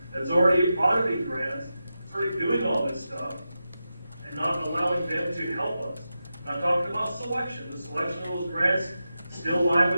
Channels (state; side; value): inverted; both; correlation -0.90